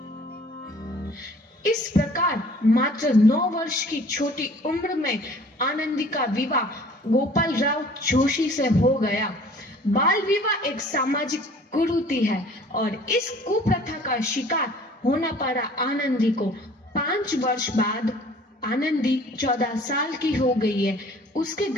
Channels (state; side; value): normal; both; correlation 0.51